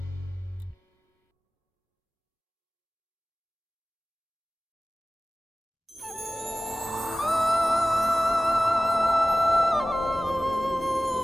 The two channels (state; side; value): normal; both; correlation 0.96